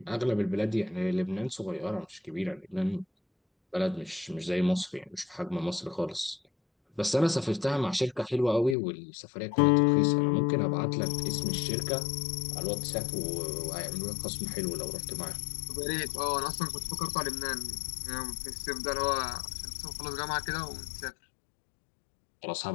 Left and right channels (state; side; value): drops out; right; at 8.8 s